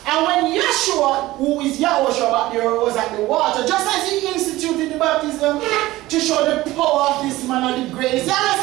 And when Yeshua, who is Yahushua back there, was at the water, just as he instituted the baptism to show the power of this man and the grace, Yahweh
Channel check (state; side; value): quieter; left; 17.6 dB